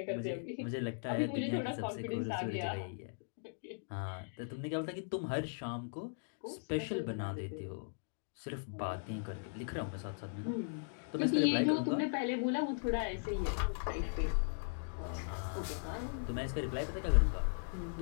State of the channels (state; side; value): silent; right; digital silence